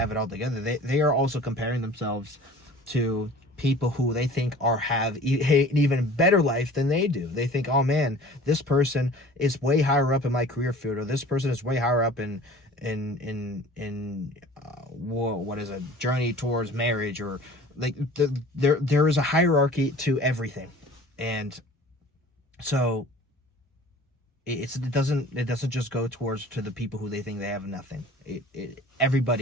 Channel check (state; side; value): normal; both; correlation 0.46